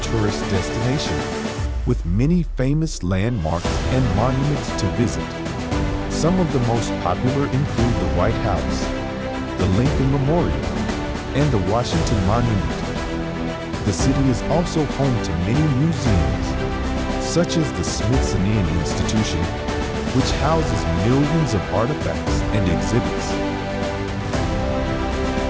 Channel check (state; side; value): identical; both; correlation 1.00